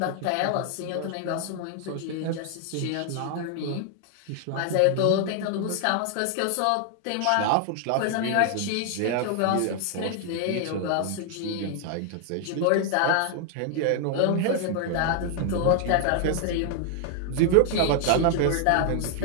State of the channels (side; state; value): both; different; correlation 0.00